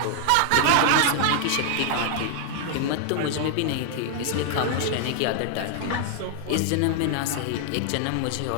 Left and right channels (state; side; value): different; both; correlation 0.00